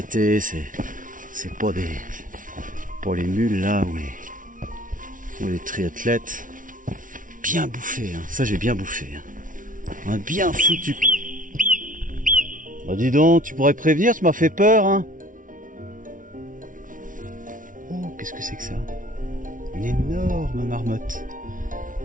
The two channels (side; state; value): left; late; 0.38 ms